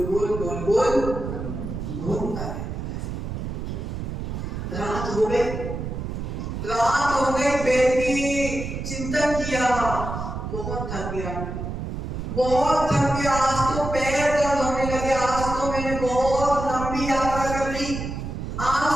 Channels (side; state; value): right; noise; rumble, 5 dB below the sound